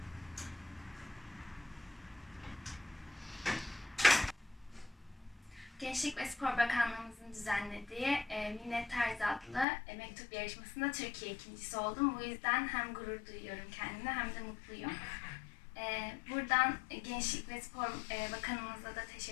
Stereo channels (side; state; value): right; drops out; at 9.7 s